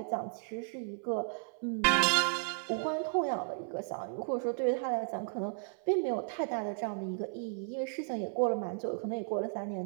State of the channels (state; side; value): silent; left; 55 dB below the other